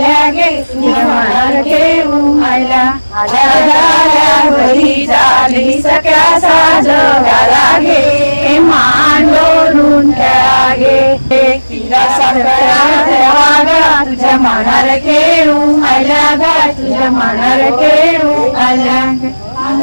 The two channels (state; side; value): inverted; both; correlation -1.00